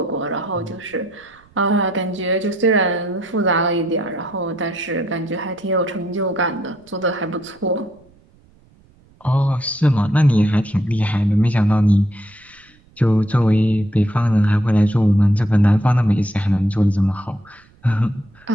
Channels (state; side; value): noise; right; rumble, 30 dB below the sound